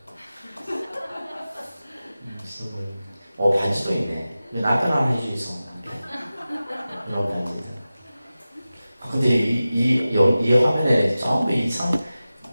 있어 보이네. 반지도 있네. 남편 하나 해주이소. 이런 반지들. 근데 이 화면에 전부 이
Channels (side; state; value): both; inverted; correlation -0.95